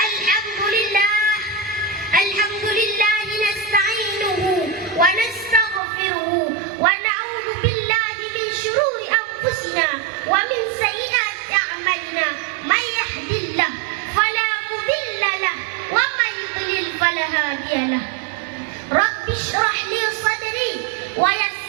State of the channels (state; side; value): drops out; left; at 5.8 s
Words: Alhamdulillah nasta'inuhu wa nastaghfiruhu wa na'udzu billahi min syururi anfusina wa min sayyiati a'malina. May yahdihillah fala mudilla lahu wa may yudlil fala hadiya lahu. Rabbi shrah li sadri wa